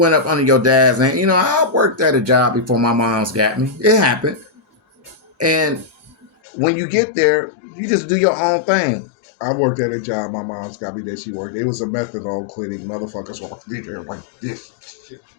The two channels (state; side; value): drops out; right; at 6.3 s